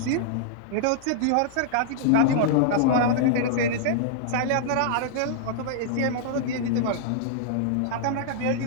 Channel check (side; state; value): both; different; correlation -0.01